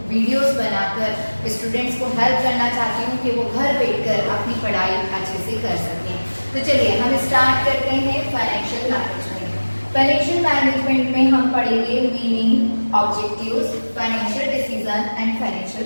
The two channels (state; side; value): inverted; both; correlation -1.00